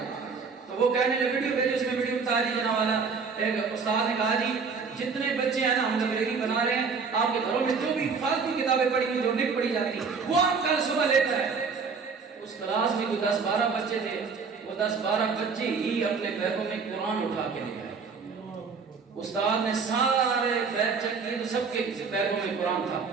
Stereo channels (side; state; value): left; quieter; 5.2 dB